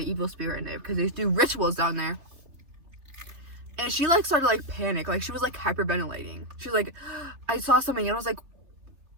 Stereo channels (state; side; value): late; left; 3.4 ms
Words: spirit in there, because they do rituals down there. And she like started like panic, like she was like hyperventilating. She was like, "I saw something," and I was like,